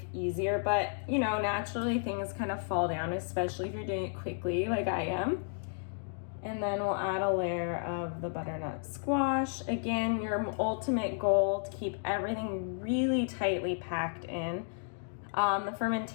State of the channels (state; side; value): silent; right; digital silence